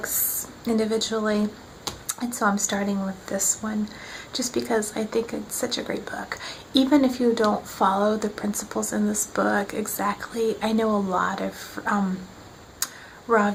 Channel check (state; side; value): identical; both; correlation 1.00